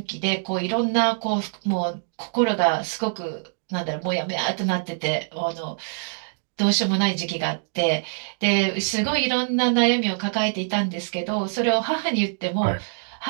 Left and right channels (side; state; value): left; silent; digital silence